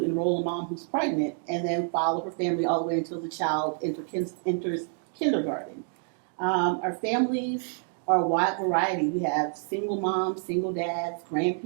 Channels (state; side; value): silent; left; 59 dB below the other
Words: enroll a mom who's pregnant and then follow her family all the way until the child enters kindergarten. Our families are a wide variety. We have single moms, single dads,